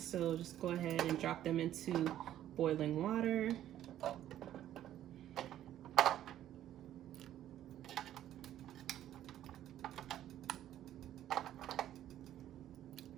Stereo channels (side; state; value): left; quieter; 12.0 dB